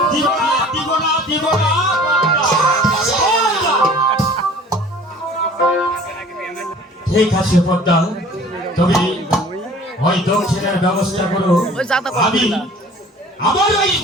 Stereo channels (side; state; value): both; normal; correlation 0.48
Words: দিব না দিব না দিব না। ঠিক আছে পদ্মা, তুমি ওই দক্ষিণের ব্যবস্থা করো। ওই জাতা করতে আমি না। আমার ওই